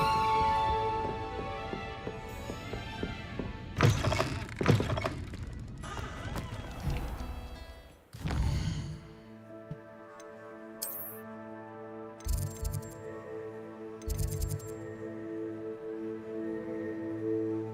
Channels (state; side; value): identical; both; correlation 1.00